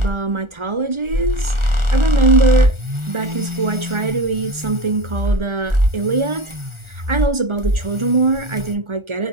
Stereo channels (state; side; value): late; left; 1.4 ms